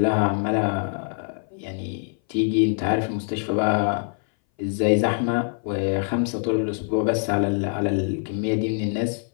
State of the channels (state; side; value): silent; right; 59 dB below the other